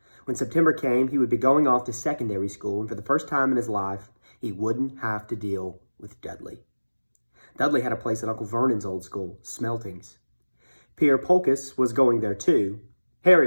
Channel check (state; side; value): inverted; both; correlation -1.00